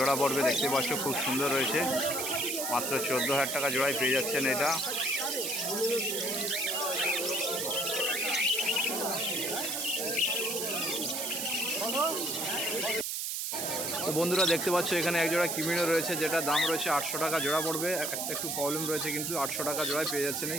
পড়বে। দেখতে পাচ্ছ খুব সুন্দর রয়েছে, মাত্র 14,000 টাকা জোড়ায় পেয়ে যাচ্ছেন এটা। তো বন্ধুরা দেখতে পাচ্ছ এখানে এক জোড়া কিমিনো রয়েছে, যেটা দাম রয়েছে 800 টাকা জোড়া পড়বে। একটু প্রবলেম রয়েছে, কিন্তু 800 টাকা জোড়ায় পেয়ে যাচ্ছেন এই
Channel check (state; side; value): noise; right; hiss, 2 dB below the sound